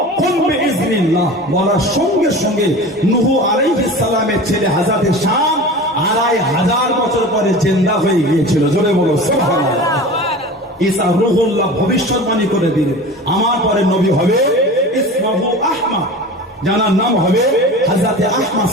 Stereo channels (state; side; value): normal; both; correlation 0.35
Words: কুম বিইজনিল্লাহ, বলার সঙ্গে সঙ্গে নূহ আলাইহিস সালামের ছেলে হযরত শাম 2500 বছর পরে জিন্দা হয়ে গিয়েছিল। জোরে বলো সুবহানাল্লাহ। ঈসা রূহুল্লাহ ভবিষ্যৎবাণী করে দিলেন আমার পরে নবী হবে ইসমহু আহমদ, যার নাম হবে হযরত আহমদ